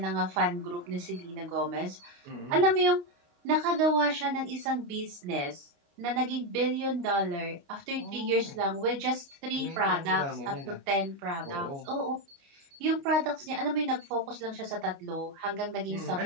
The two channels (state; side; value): late; left; 29 ms